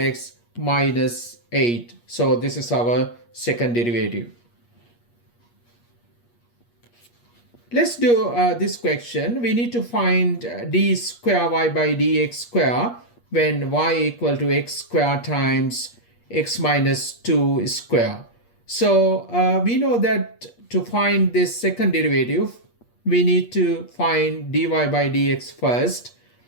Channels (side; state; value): right; late; 8.4 ms